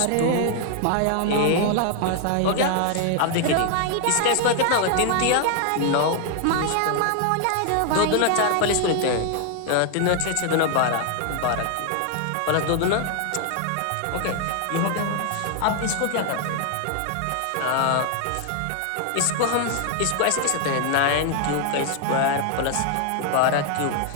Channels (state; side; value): different; both; correlation 0.00